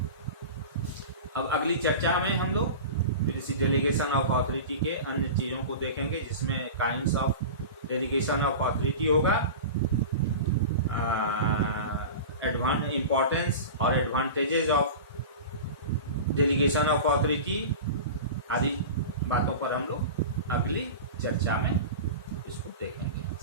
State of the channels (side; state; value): both; inverted; correlation -0.31